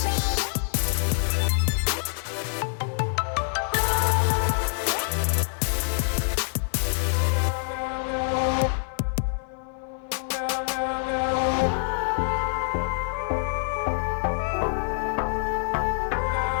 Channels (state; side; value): silent; right; digital silence